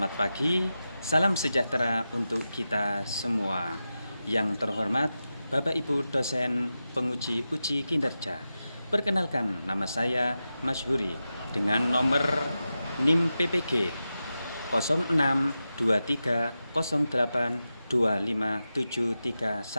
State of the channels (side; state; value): both; inverted; correlation -0.92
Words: pagi, salam sejahtera untuk kita semua. Yang terhormat Bapak Ibu dosen penguji uji kinerja. Perkenalkan, nama saya Masyhuri dengan nomor NIM PPG 0623082571.